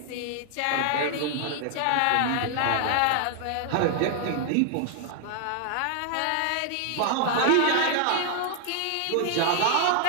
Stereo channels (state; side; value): different; both; correlation 0.00